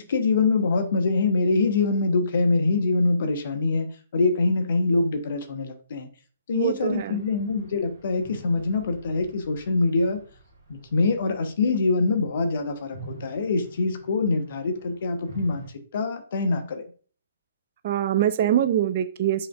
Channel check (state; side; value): inverted; both; correlation -0.67